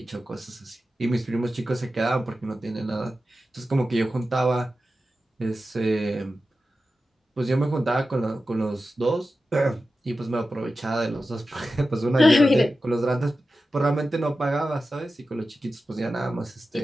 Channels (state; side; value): normal; both; correlation 0.93